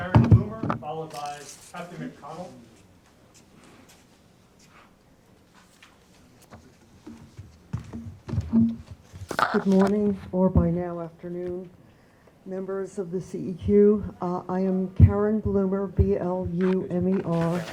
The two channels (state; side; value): identical; both; correlation 1.00